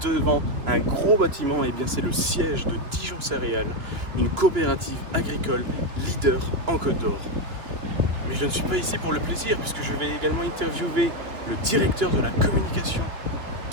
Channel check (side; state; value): left; late; 3.1 ms